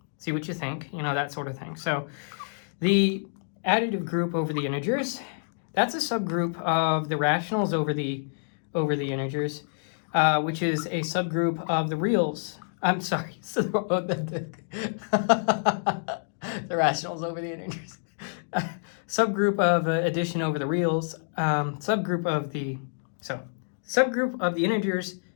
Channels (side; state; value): right; silent; digital silence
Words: see what you think, you know, that sort of thing. So the additive group over the integers, that's a subgroup of the rationals over the integers, which is a subgroup of the reals. I'm sorry, so the rationals over the integers. Subgroup of addition over the reals. Subgroup of the integers.